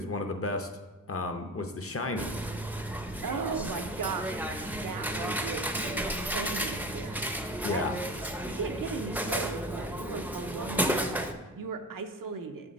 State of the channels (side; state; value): both; normal; correlation 0.32